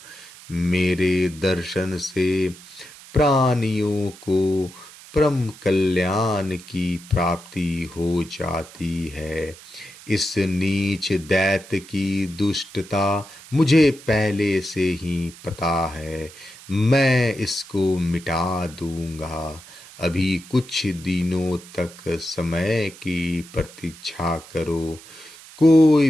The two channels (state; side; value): noise; right; hiss, 19 dB below the sound